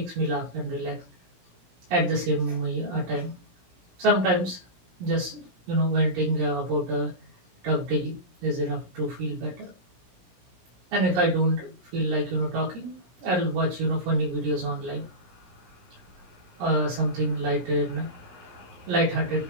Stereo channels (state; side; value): late; left; 17 ms